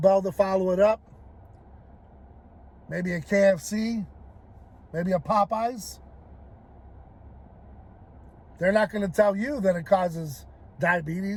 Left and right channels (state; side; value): identical; both; correlation 1.00